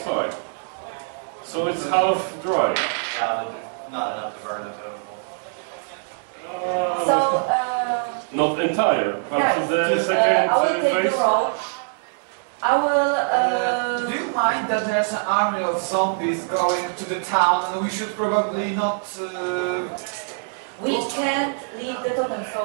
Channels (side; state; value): left; silent; digital silence